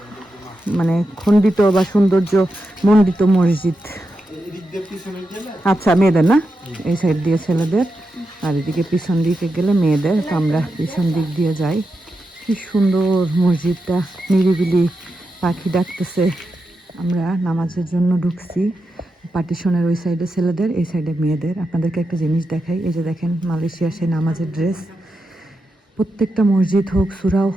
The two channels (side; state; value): both; normal; correlation 0.87